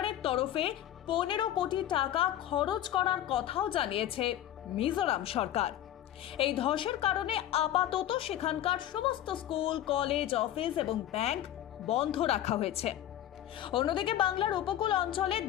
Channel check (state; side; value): quieter; right; 12.2 dB